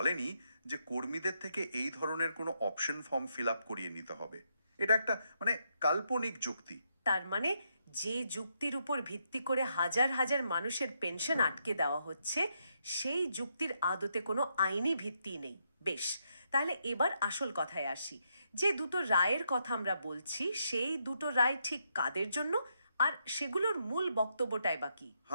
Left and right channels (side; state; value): both; inverted; correlation -0.79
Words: যে কর্মীদের থেকে এই ধরনের কোনো অপশন ফর্ম ফিল আপ করিয়ে নিতে হবে। এটা একটা মানে কাল্পনিক যুক্তি। তার মানে যে যুক্তির উপর ভিত্তি করে হাজার হাজার মানুষের পেনশন আটকে দেওয়া হচ্ছে, সেই যুক্তির আদতে কোনো আইনি ভিত্তি নেই। বেশ, তাহলে এবার আসল কথায় আসি। যে দুটো রায়ের কথা আমরা বলছি, সেই দুটো রায় ঠিক কাদের জন্য, আর সেগুলোর মূল বক্তব্যটাই বা কি?